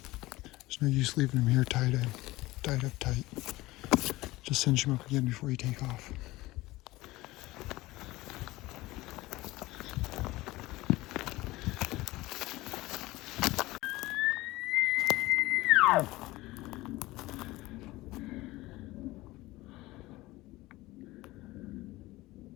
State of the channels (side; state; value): right; quieter; 19.2 dB